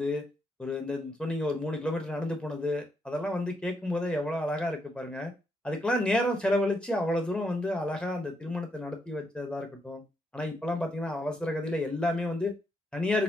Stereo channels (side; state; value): both; normal; correlation 0.78